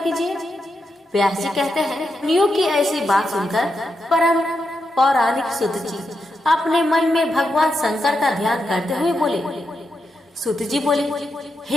व्यास जी कहते हैं, मुनियों की ऐसी बात सुनकर परम पौराणिक सूत जी अपने मन में भगवान शंकर का ध्यान करते हुए बोले। सूत जी बोले,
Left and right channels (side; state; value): both; normal; correlation 0.85